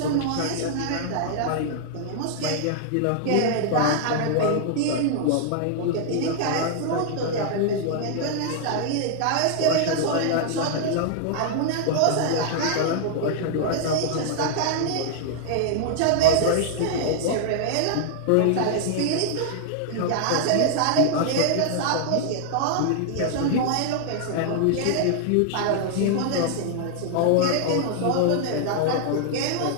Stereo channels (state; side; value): different; both; correlation -0.01